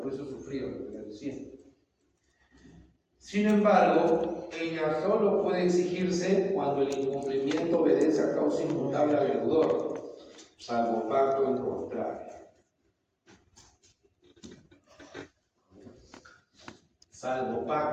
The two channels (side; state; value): both; identical; correlation 1.00